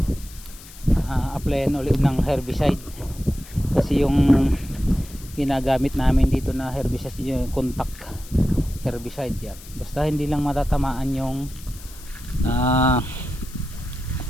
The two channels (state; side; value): noise; left; hiss, 19 dB below the sound